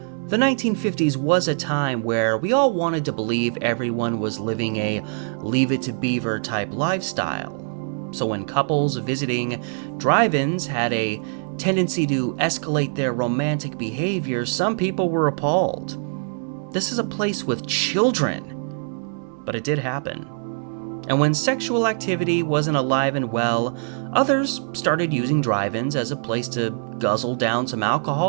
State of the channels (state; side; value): silent; left; digital silence